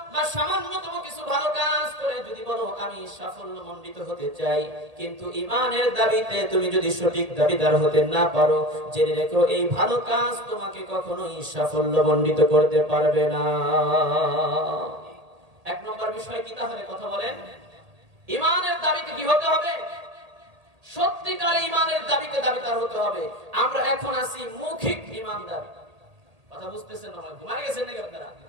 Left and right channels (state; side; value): late; left; 1.8 ms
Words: বা সামান্যতম কিছু ভালো কাজ করে যদি বলো আমি সাফল্যমণ্ডিত হতে চাই, কিন্তু ঈমানের দাবিতে তুমি যদি সঠিক দাবিদার হতে না পারো, জেনে রেখো এই ভালো কাজ তোমাকে কখনোই সাফল্যমণ্ডিত করতে পারবে না। এক নম্বর বিষয় কি তাহলে? কথা বলেন, ঈমানের দাবিতে কি হতে হবে? সত্যিকার ঈমানের দাবিতে দাবিদার হতে হবে। আমরা এখন আছি মৌখিক ঈমানদার। কথা বুঝতেছেন না? ঘুমায় গেছেন নাকি আপনারা?